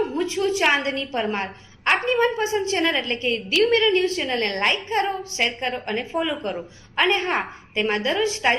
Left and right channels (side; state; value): both; identical; correlation 1.00